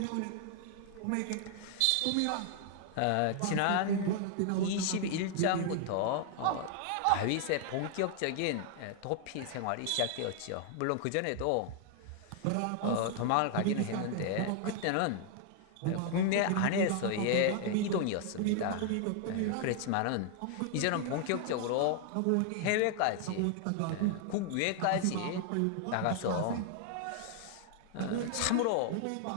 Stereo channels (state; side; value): different; both; correlation 0.00